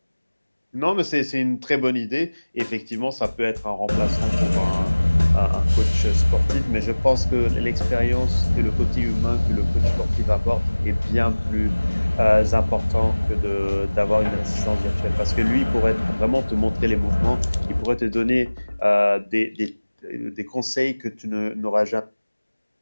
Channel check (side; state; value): both; inverted; correlation -1.00